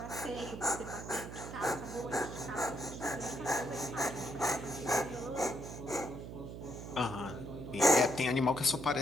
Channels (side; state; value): right; noise; hum, 10 dB below the sound